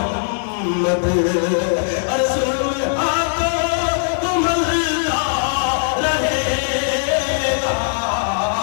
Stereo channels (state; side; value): silent; right; 58 dB below the other